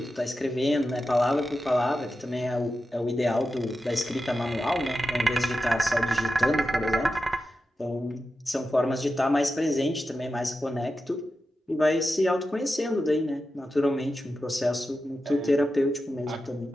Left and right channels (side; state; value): both; normal; correlation 0.91